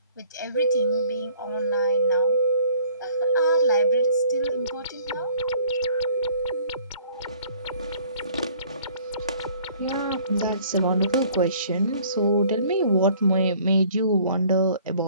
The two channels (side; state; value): both; inverted; correlation -0.56